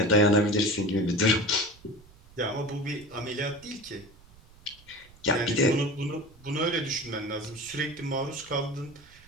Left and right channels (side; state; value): right; noise; rumble, 25 dB below the sound